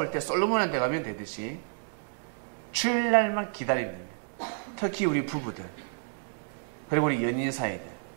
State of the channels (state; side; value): silent; left; 58 dB below the other